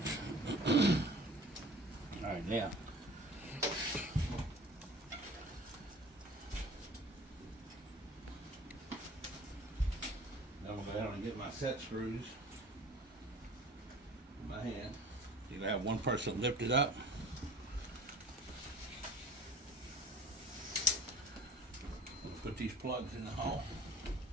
Alright, now. I'm going to go ahead and get my set screws in my hand. You're going to have one person lift it up. Put these plugs in the hole.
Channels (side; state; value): both; normal; correlation 0.46